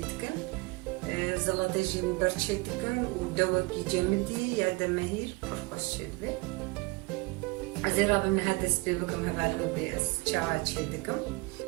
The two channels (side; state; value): left; quieter; 25.1 dB